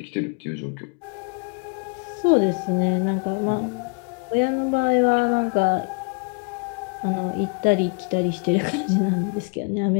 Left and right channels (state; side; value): quieter; right; 33.2 dB